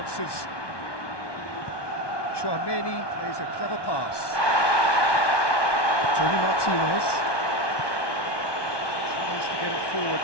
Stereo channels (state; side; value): late; right; 1.2 ms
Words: Chouameni plays a clever pass. Tony Martinez. Tries to get it forward